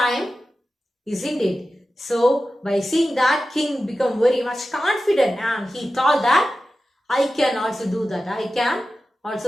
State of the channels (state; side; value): normal; both; correlation 0.93